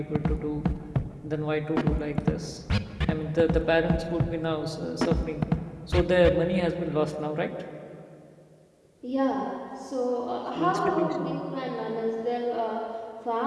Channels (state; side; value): identical; both; correlation 1.00